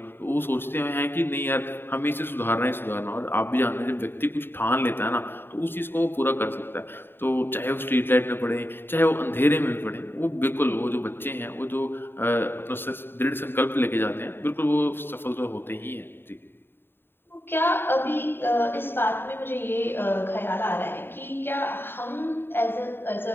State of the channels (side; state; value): right; late; 0.10 ms